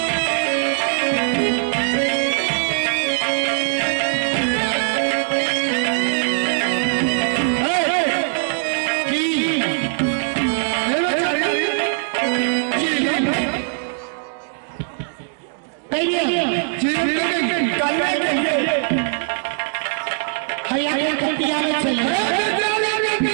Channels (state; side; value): silent; left; digital silence